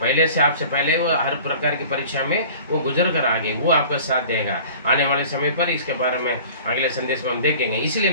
से आपसे पहले वो हर प्रकार की परीक्षा में वो गुजर कर आगे, वो आपका साथ देगा आने वाले समय पर। इसके बारे में अगले संदेश में हम देखेंगे। इसलिए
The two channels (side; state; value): both; inverted; correlation -0.44